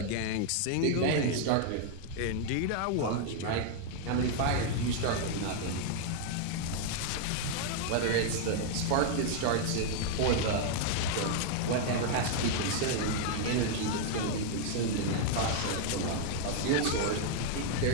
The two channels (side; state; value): both; different; correlation 0.00